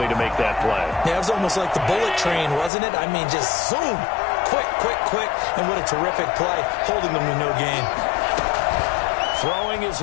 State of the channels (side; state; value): right; drops out; at 2.7 s